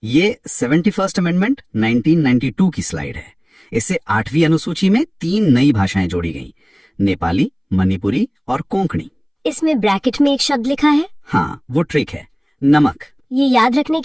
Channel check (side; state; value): both; identical; correlation 1.00